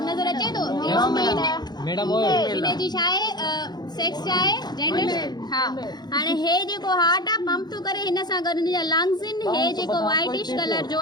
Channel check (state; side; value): late; right; 0.20 ms